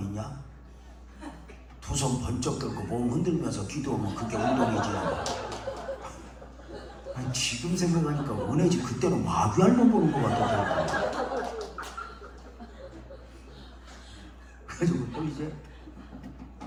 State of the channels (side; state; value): both; identical; correlation 1.00